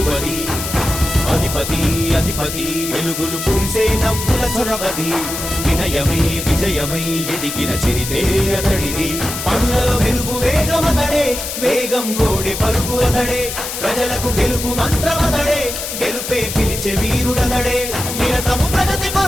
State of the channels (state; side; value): noise; left; hiss, 6 dB below the sound